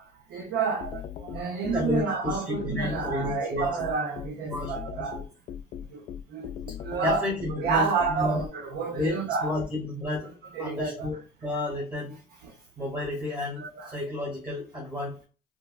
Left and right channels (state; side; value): normal; both; correlation 0.31